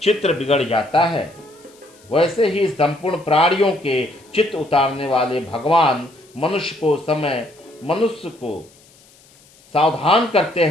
चित्र बिगड़ जाता है, वैसे ही संपूर्ण प्राणियों के चित्त उतारने वाले भगवान मनुष्य को सावधान करते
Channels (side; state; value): left; noise; hiss, 28 dB below the sound